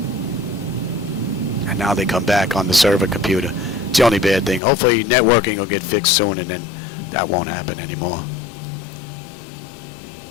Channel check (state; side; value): drops out; right; at 4.6 s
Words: And now they come back on the server computer. It's the only bad thing. Hopefully networking will get fixed soon and then that won't happen anymore.